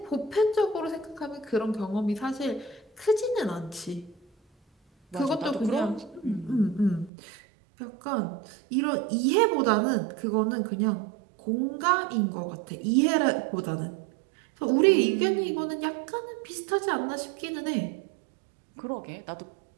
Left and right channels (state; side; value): drops out; left; at 7.1 s